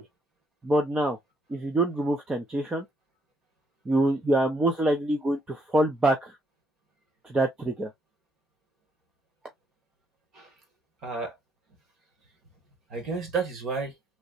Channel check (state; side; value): normal; both; correlation 0.73